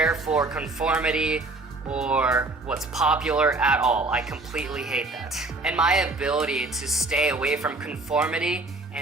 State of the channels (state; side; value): quieter; left; 3.1 dB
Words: for conformity or what's popular at all. I completely hate that. And my ability to stay away from conformity